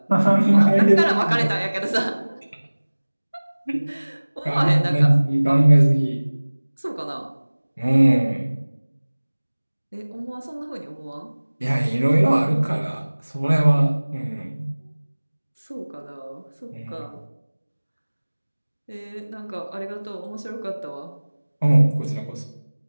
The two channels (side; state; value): both; inverted; correlation -1.00